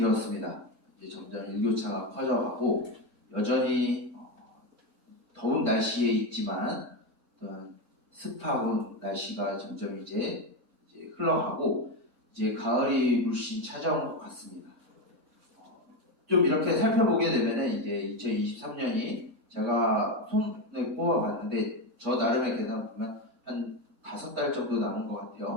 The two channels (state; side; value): normal; both; correlation 0.14